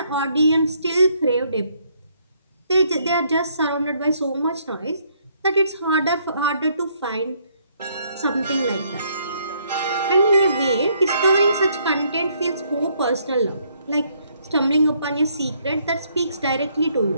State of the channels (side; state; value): both; inverted; correlation -0.69